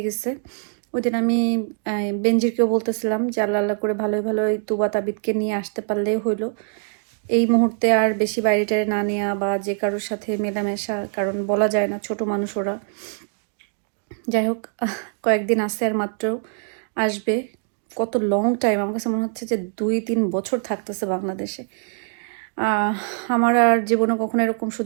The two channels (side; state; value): left; silent; digital silence